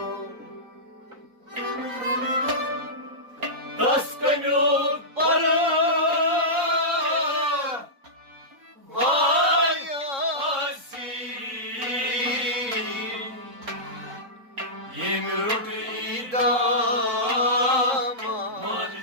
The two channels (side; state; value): left; late; 3.7 ms